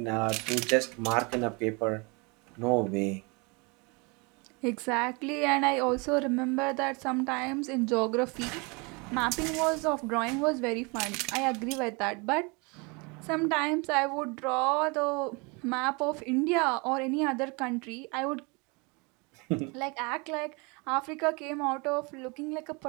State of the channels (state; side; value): quieter; left; 29.4 dB